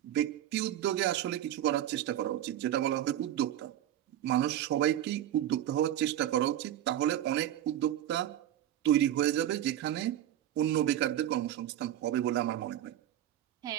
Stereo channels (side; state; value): left; quieter; 12.0 dB